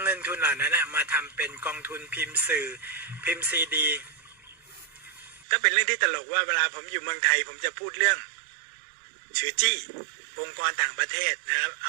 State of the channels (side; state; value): left; drops out; at 5.5 s